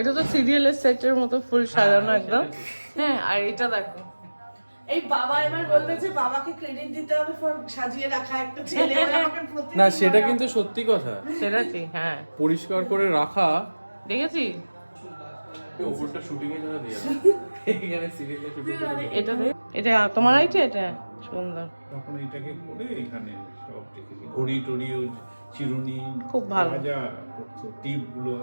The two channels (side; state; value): both; inverted; correlation -1.00